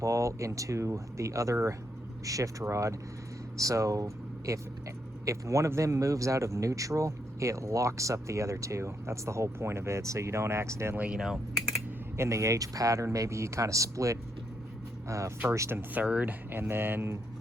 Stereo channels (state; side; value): normal; both; correlation 0.78